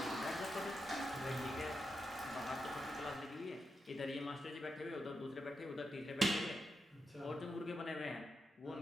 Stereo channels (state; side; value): normal; both; correlation 0.87